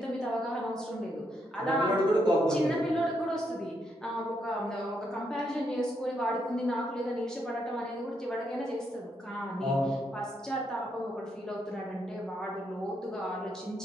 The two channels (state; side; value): normal; both; correlation 0.78